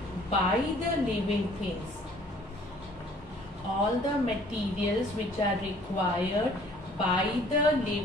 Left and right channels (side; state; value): both; normal; correlation 0.55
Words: by the living things. All the materials which are required by the